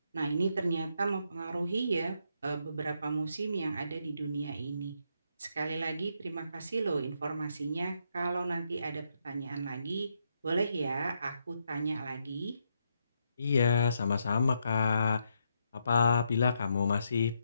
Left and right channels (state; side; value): inverted; both; correlation -0.78